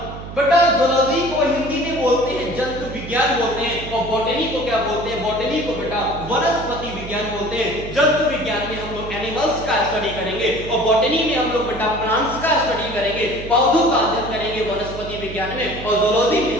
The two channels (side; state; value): right; noise; hum, 11 dB below the sound